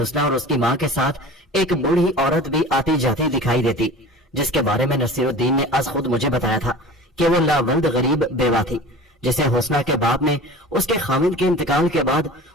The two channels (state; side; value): normal; both; correlation 0.38